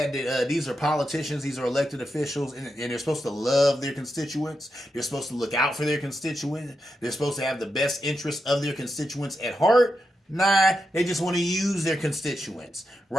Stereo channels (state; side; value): normal; both; correlation 0.87